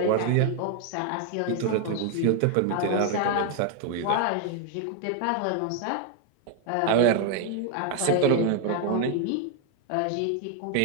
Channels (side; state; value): both; different; correlation 0.01